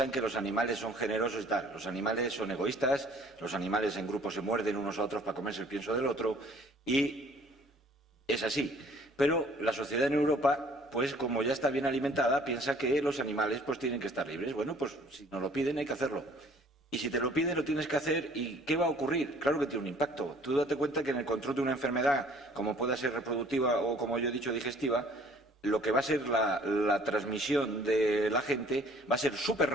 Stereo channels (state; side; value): normal; both; correlation 0.55